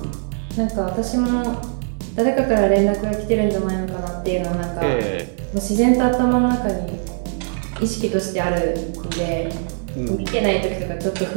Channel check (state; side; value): silent; left; 65 dB below the other